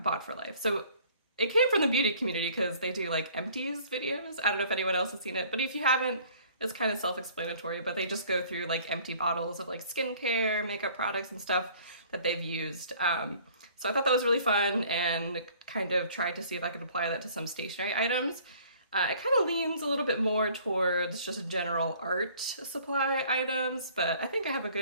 for life. So it came from the beauty community because they do like Empties videos. I don't know if anyone else has seen it, but if you haven't, it's kind of self-explanatory, but they just go through like empty bottles of like skincare, makeup products and stuff that they've used. So I thought that was really fun and kind of tried to see if I could apply that to some stationery items. It kind of leans a little bit more towards just general art supply items, but I think I have a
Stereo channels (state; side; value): inverted; both; correlation -0.54